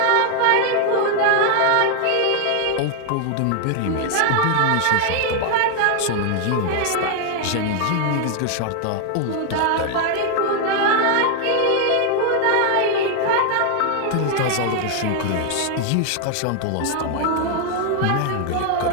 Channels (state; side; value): different; both; correlation 0.00